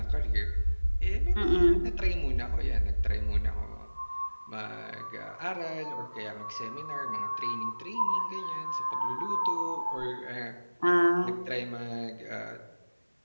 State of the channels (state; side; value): inverted; both; correlation -1.00